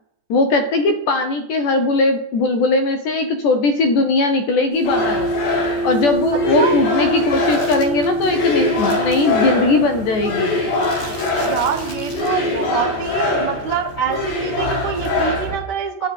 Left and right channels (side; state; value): right; late; 14 ms